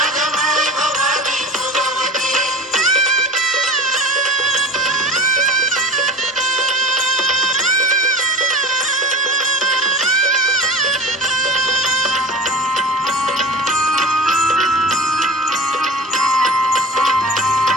माय भवानी जोगवते.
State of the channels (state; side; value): normal; both; correlation 0.37